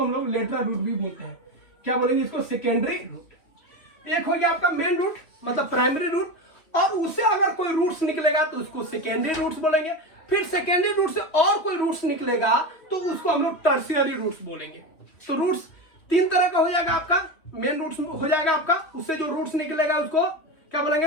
हम लोग लेटरल रूट भी बोलते हैं। क्या बोलेंगे इसको, सेकेंडरी रूट। एक हो गया आपका मेन रूट मतलब प्राइमरी रूट, और उससे अगर कोई रूट्स निकलेगा तो उसको सेकेंडरी रूट्स बोलेंगे। फिर सेकेंडरी रूट से और कोई रूट्स निकलेगा तो उसको हम लोग टर्शियरी रूट्स बोलेंगे। तो रूट्स तीन तरह का हो जाएगा आपका, मेन रूट्स हो जाएगा आपका, उससे जो रूट्स निकलेगा उसको क्या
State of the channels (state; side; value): late; right; 3.1 ms